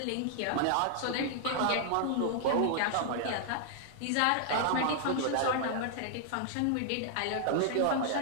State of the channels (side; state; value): both; different; correlation 0.00